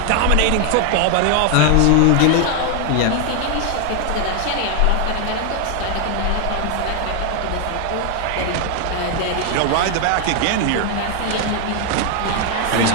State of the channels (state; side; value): different; both; correlation 0.00